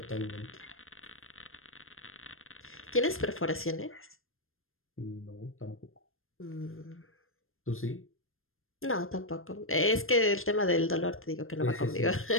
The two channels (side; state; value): right; late; 0.60 ms